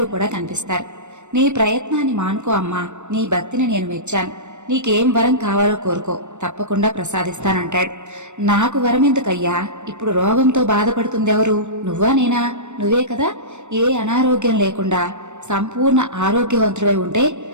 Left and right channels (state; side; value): late; left; 0.84 ms